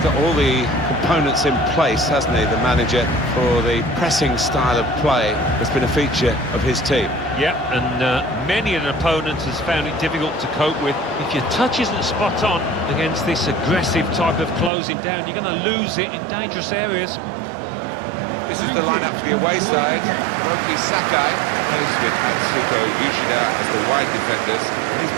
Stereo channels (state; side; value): drops out; left; at 14.7 s